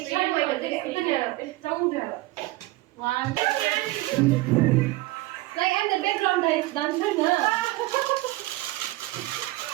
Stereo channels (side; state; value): left; quieter; 19.1 dB